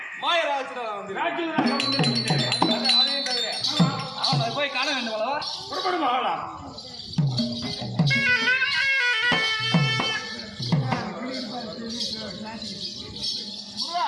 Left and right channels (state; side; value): identical; both; correlation 1.00